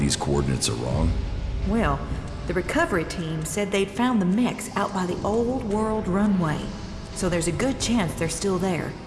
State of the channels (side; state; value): both; identical; correlation 1.00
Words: coordinates are wrong? Well, the recovery team said they'd found the mechs out by the old world runway. So there's a good chance they're still there.